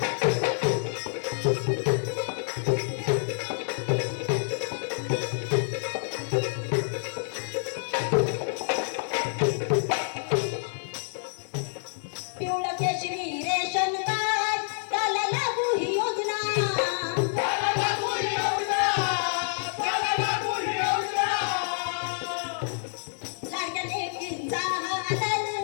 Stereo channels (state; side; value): silent; right; 59 dB below the other